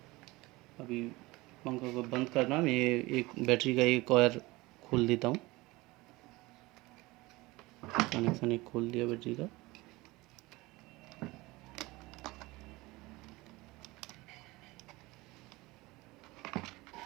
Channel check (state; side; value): quieter; left; 21.3 dB